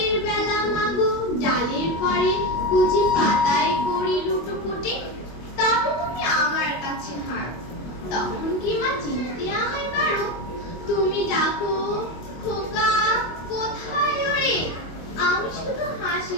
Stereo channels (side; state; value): right; late; 25 ms